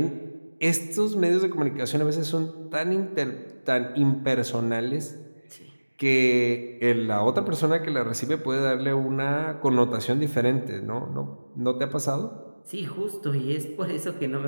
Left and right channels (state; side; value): inverted; both; correlation -1.00